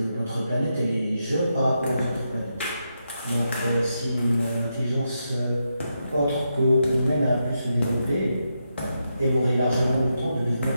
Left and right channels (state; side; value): inverted; both; correlation -0.85